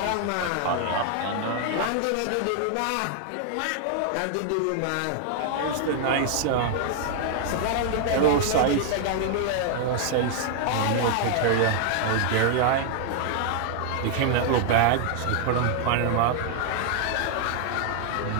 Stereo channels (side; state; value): both; different; correlation 0.00